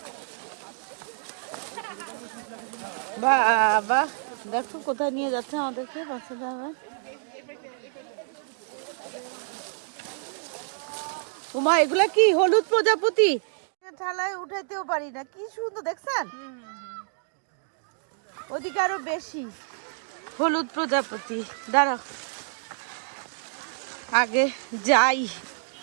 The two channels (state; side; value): silent; left; digital silence